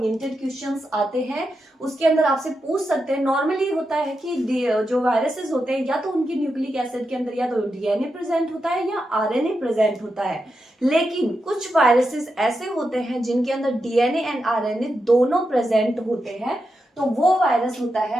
क्वेश्चंस आते हैं। उसके अंदर आपसे पूछ सकते हैं, नॉर्मली होता है कि जो वायरसेस होते हैं या तो उनकी न्यूक्लिक एसिड के अंदर या तो डीएनए प्रेजेंट होता है या आरएनए प्रेजेंट होता है, लेकिन कुछ वायरसेस ऐसे होते हैं जिनके अंदर डीएनए एंड आरएनए दोनों प्रेजेंट होते हैं, तो वो वायरस होता है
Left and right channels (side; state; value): both; normal; correlation 0.87